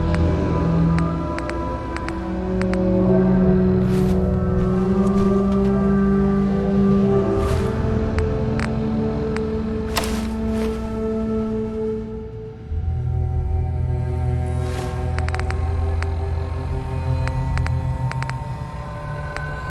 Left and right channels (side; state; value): both; identical; correlation 1.00